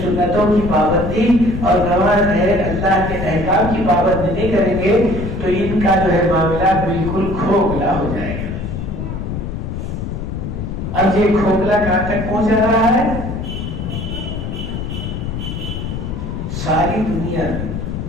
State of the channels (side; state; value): left; noise; rumble, 5 dB below the sound